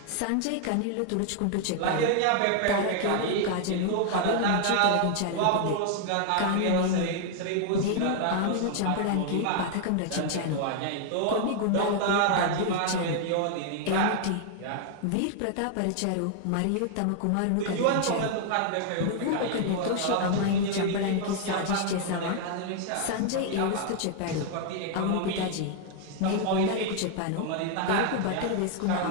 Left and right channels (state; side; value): different; both; correlation 0.00